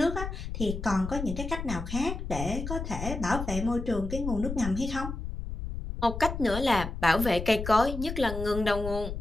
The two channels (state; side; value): noise; left; rumble, 6 dB below the sound